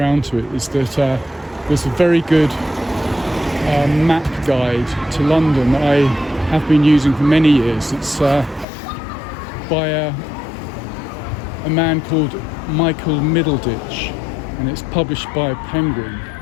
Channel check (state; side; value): drops out; right; at 8.7 s